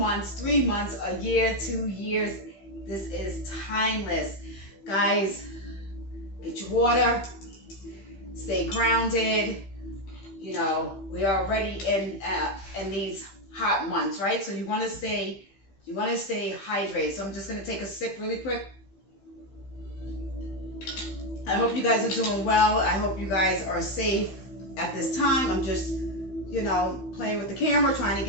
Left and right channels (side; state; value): right; late; 15 ms